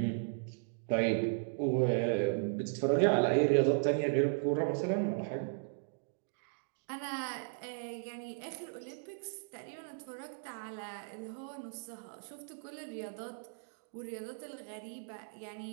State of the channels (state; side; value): silent; left; digital silence